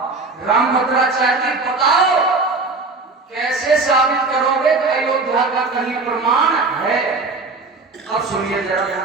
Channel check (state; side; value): quieter; left; 3.7 dB